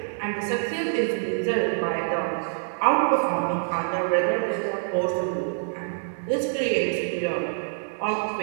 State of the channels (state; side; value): silent; left; 61 dB below the other